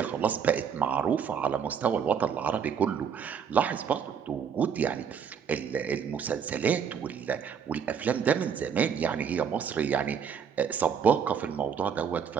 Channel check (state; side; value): quieter; left; 7.1 dB